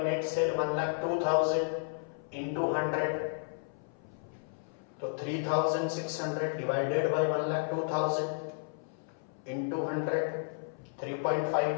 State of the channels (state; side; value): silent; right; 56 dB below the other